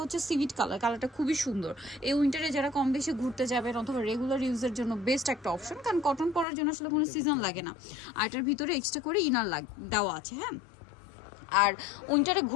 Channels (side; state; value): right; drops out; at 6.5 s